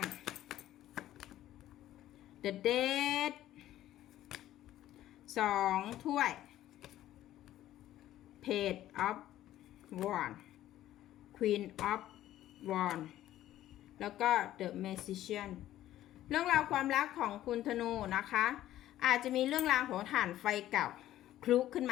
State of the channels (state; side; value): quieter; right; 13.4 dB